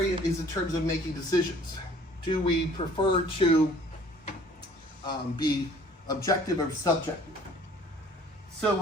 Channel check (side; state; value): both; normal; correlation 0.53